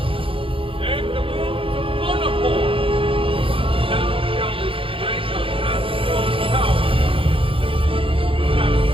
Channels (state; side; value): late; left; 0.26 ms